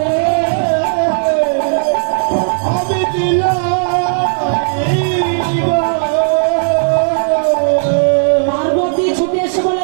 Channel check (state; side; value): silent; left; digital silence